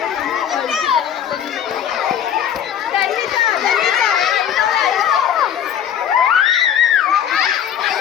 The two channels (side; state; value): right; quieter; 9.3 dB